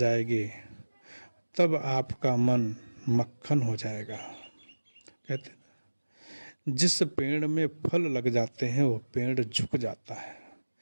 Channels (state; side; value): inverted; both; correlation -1.00